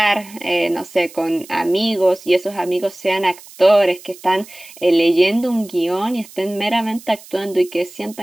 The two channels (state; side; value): noise; right; hiss, 20 dB below the sound